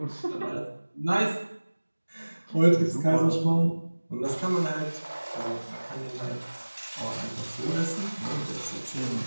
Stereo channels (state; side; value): inverted; both; correlation -1.00